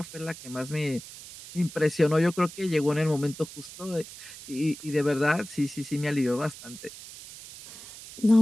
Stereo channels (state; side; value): noise; right; hiss, 15 dB below the sound